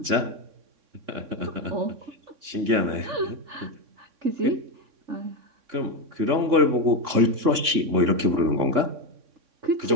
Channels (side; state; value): left; late; 3.6 ms